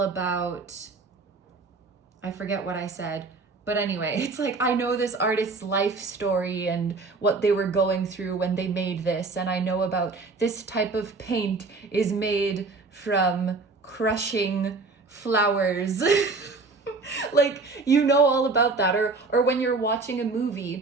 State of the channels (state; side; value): quieter; left; 3.9 dB